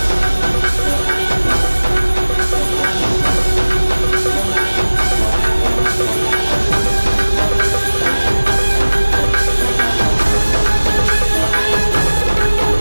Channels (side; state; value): both; inverted; correlation -1.00